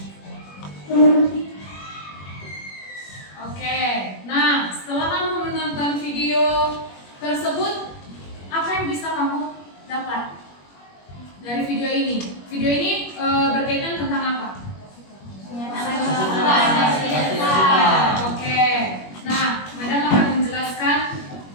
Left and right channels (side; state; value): right; late; 21 ms